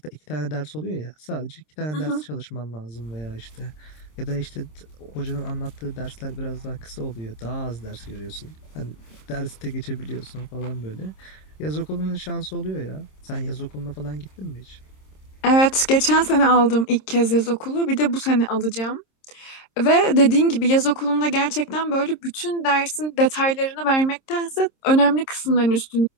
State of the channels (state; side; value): late; right; 26 ms